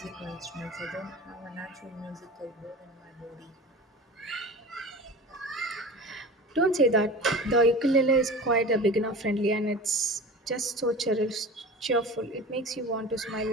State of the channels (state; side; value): normal; both; correlation 0.35